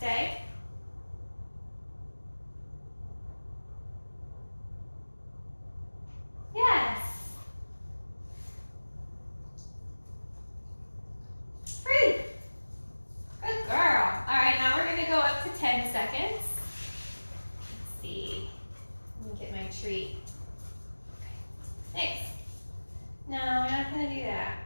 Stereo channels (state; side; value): inverted; both; correlation -1.00